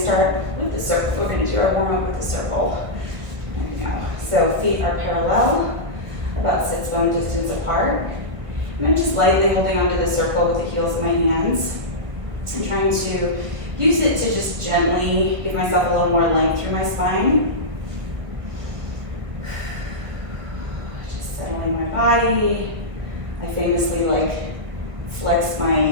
start with the circle. We're going to do our warm-up with the circle. There we go. So feet are parallel, about sits bone distance apart. And I'm just lightly holding onto the circle with the heels of my hands. I'm trying to use it to just gently give myself a little more length through my spine. Just settling my body. I famously flex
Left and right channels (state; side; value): late; left; 1.6 ms